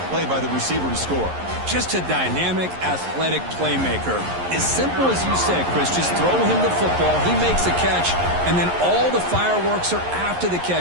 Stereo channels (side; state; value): left; late; 11 ms